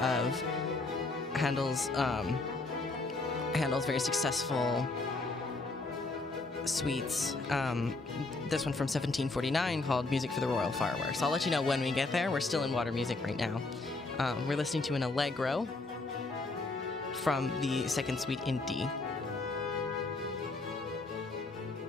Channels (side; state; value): right; quieter; 3.4 dB